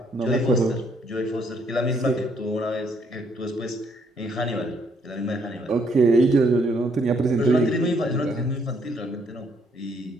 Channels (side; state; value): both; normal; correlation 0.69